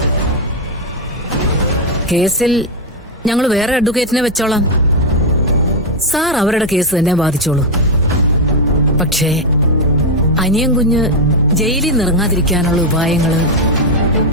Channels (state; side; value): normal; both; correlation 0.03